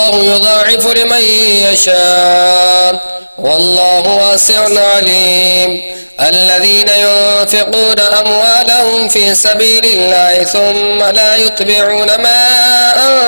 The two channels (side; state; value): both; inverted; correlation -1.00